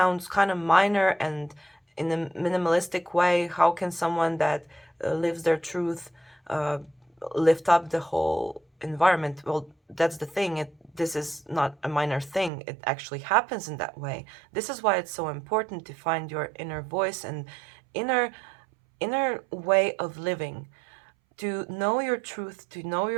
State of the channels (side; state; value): left; drops out; at 12.5 s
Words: kind of minor and in a minimalistic way. How can someone that lives their truth lift up the whole environment? Well, that's the thing. This is not a minor thing. It actually happens in that way. This is why it's so important to find your inner voice and inner way of living, to know your truth, to know